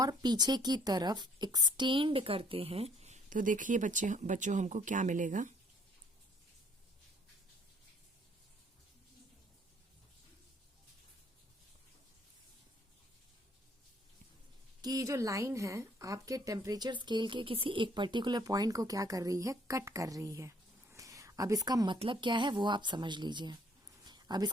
पीछे की तरफ एक्सटेंड करते हैं तो देखिए बच्चों हमको क्या मिलेगा। कि ये जो लाइन है आपके टेम्परेचर स्केल के किसी एक पर्टिकुलर पॉइंट को क्या कर रही है, कट कर रही है। अब इसका मतलब क्या है वो आप समझ लीजिए। अब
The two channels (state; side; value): normal; both; correlation 0.61